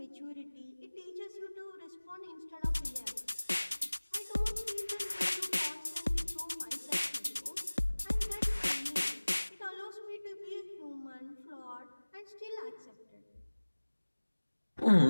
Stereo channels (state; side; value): inverted; both; correlation -1.00